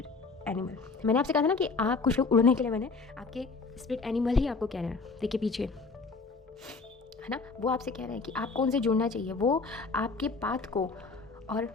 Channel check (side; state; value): right; quieter; 4.2 dB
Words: animal. मैंने आपसे कहा था ना कि आप कुछ लोग उड़ने के लिए, मैंने आपके स्पिरिट एनिमल ही आपको कह रहे हैं। देखिए पीछे है ना, वो आपसे कह रहे हैं कि आपको उनसे जुड़ना चाहिए। वो आपके पाथ को और